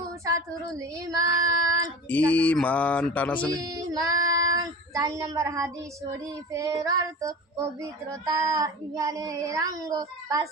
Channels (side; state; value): both; normal; correlation 0.34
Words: শাতরুল ঈমান, ঈমান টানাসনে ঈমান। চার নম্বর হাদিস শরীফের অর্থ পবিত্রতা ঈমানের অঙ্গ। পাঁচ